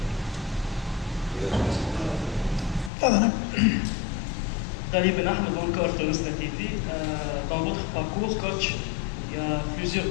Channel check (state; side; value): drops out; right; at 2.9 s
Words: Dans votre parcours, coach, il y a